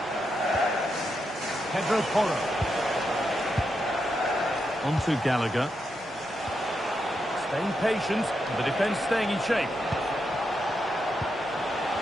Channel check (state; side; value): normal; both; correlation 0.84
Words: Pedro Porro. On to Gallagher. Staying patient, the defence staying in shape.